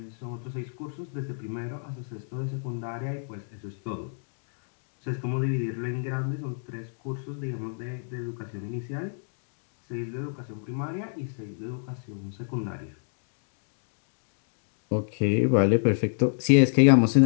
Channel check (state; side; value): silent; right; digital silence